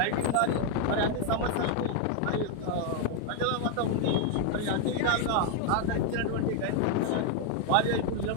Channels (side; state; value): both; different; correlation 0.00